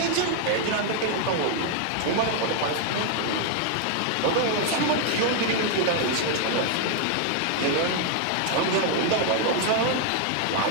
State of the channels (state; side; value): different; both; correlation 0.00